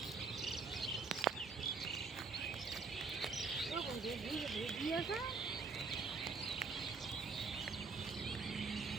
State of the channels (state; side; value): quieter; left; 4.6 dB